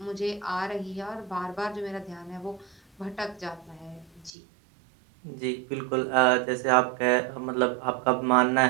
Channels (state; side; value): drops out; left; at 4.3 s